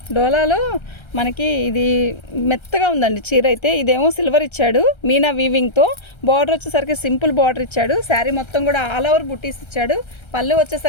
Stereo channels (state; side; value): late; right; 1.3 ms